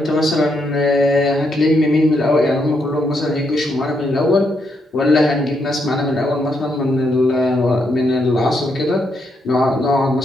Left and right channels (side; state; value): both; normal; correlation 0.78